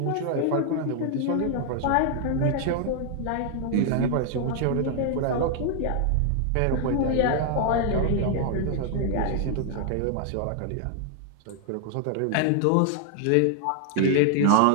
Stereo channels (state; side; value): different; both; correlation 0.00